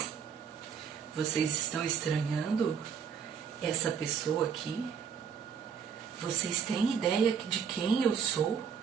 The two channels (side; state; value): left; quieter; 7.0 dB